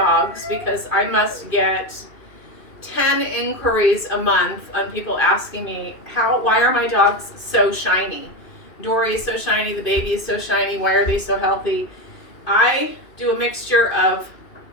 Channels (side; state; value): right; late; 2.5 ms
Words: because I must get 10 inquiries a month on people asking me, why are my dogs so shiny? Dory is so shiny, the baby is so shiny, why are they so healthy? I do a mixture of